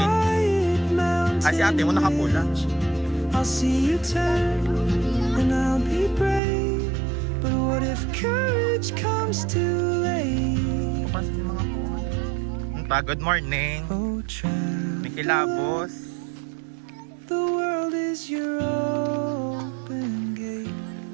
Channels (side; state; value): left; drops out; at 6.4 s